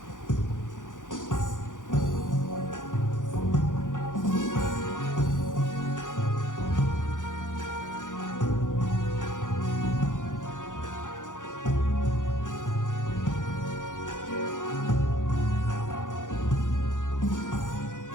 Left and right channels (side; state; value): right; late; 0.88 ms